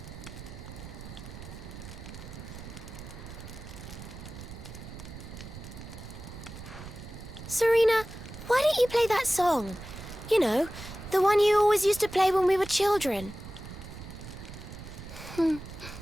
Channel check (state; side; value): noise; right; rumble, 12 dB below the sound